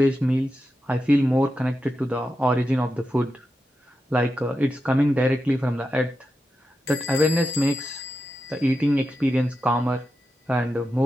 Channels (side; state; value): both; normal; correlation 0.89